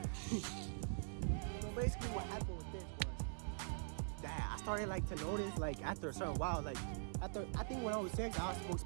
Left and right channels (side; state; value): left; silent; digital silence